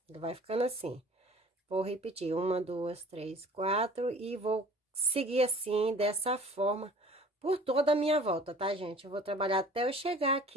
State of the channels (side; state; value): both; normal; correlation 0.49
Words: Ele vai ficando assim. Vou repetir, 1, 2, 3, 4 e vou seguir assim, dessa forma, por toda a minha volta, tá, gente? Eu vou trabalhar até eu chegar